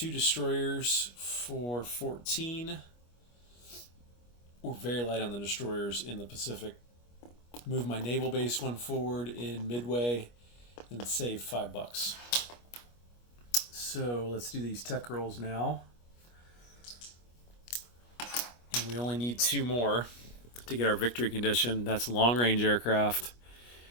destroyers for 14. We're very light on the destroyers in the Pacific. Move my naval base one forward in Midway and save $5. So let's do these tech rolls now. And we only need two more to get our victory condition. That's long range aircraft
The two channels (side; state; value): right; late; 25 ms